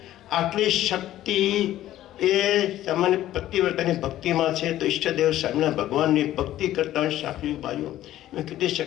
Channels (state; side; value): quieter; right; 13.6 dB